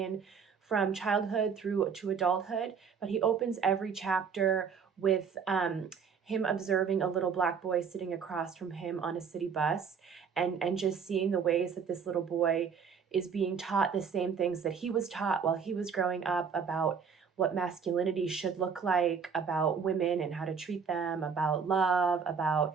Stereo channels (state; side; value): quieter; left; 6.3 dB